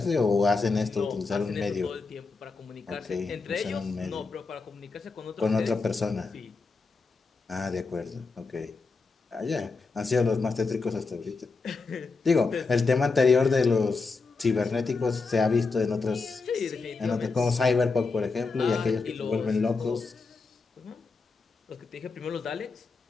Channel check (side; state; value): right; quieter; 4.2 dB